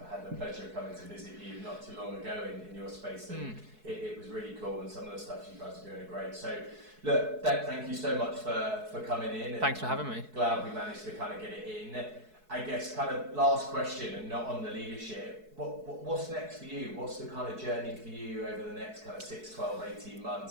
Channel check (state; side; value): late; left; 4.7 ms